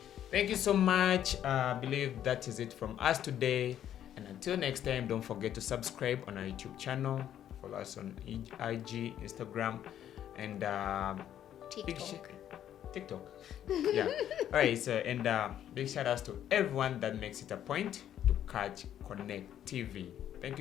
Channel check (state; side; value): quieter; right; 10.7 dB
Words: thank you so much. I believe that is it from us today. And until next time, don't forget to subscribe on our YouTube channel. Follow us on IG, Instagram, and TikTok. Yeah. All right. So, and big shout outs to everyone that makes it a point to catch Connect TV. Thank